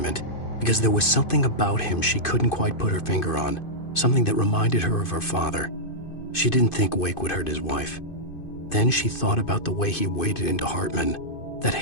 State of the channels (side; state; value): right; late; 2.5 ms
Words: because there was something about him she couldn't quite put her finger on, something that reminded her of her father. She didn't think Wake would hurt his wife. Then she thought about the way he waded into Hartman, that